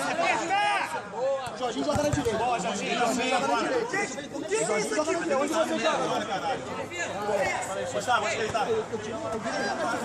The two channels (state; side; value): identical; both; correlation 1.00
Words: Jorginho joga na direita. Boa, Jorginho joga na direita. O que é isso aqui? Onde você joga? Gostava, vou aceitar.